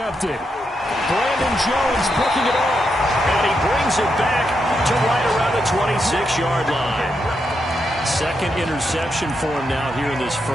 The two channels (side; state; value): both; normal; correlation 0.83